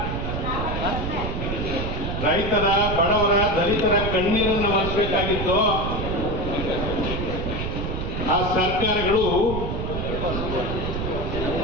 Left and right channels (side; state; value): right; noise; rumble, 3 dB below the sound